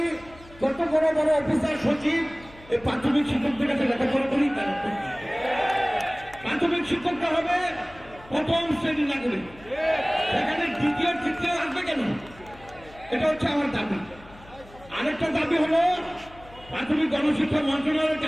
কত বড় বড় অফিসার সচিব এই প্রাথমিক শিক্ষকদের কাছে লেখাপড়া করি। প্রাথমিক শিক্ষকটা হবে প্রথম শ্রেণী নাগরিক, সেখানে দ্বিতীয় তৃতীয় আসবে কেন? এটা হচ্ছে আমার দাবি। আরেকটা দাবি হলো প্রাথমিক গণশিক্ষা মন্ত্রণালয়ের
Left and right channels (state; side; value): noise; left; hum, 22 dB below the sound